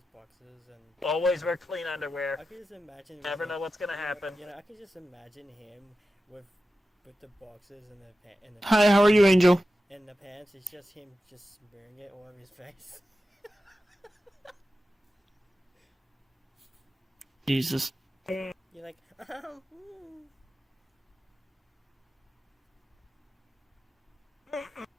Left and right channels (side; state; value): both; normal; correlation 0.93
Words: boxes and. Always wear clean underwear. I could just imagine. Never know what's gonna happen. You know, I could just imagine him with the boxes and the Hi, how are you, Angel? and the pants. It's just him just smearing it all over his face. Jesus. You're like,